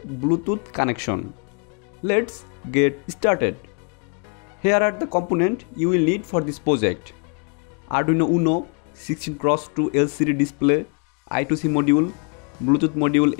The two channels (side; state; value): right; quieter; 37.4 dB